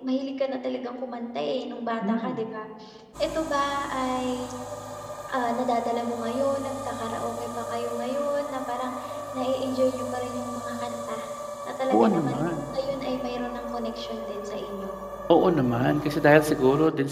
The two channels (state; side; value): identical; both; correlation 1.00